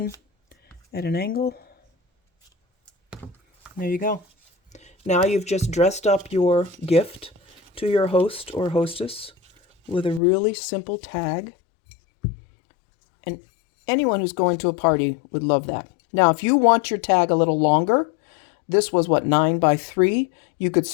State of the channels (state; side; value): drops out; right; at 10.2 s